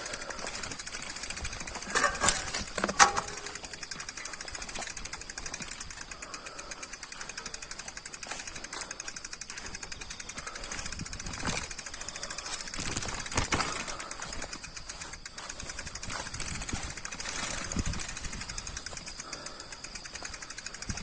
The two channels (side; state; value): both; identical; correlation 1.00